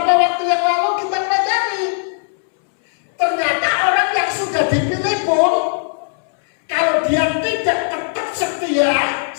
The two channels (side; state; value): right; silent; 67 dB below the other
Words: waktu yang lalu kita pelajari, ternyata orang yang sudah dipilih pun kalau dia tidak tetap setia